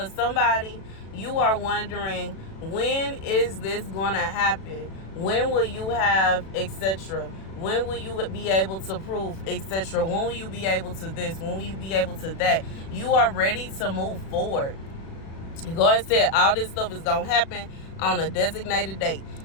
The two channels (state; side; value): late; right; 36 ms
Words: somebody, you are wondering, when is this going to happen? When will you have, etc.? When will you be able to prove, etc.? When will you be able to this? When will you be able to that? You are ready to move forward. God said all this stuff is going to happen on a designated date.